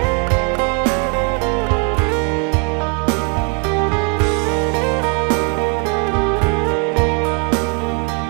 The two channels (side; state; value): left; quieter; 36.9 dB